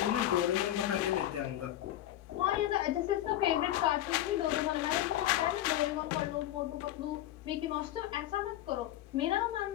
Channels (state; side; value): quieter; right; 13.3 dB